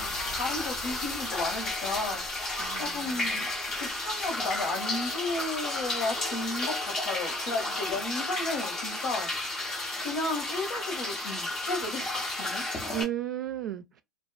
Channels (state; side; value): normal; both; correlation 0.57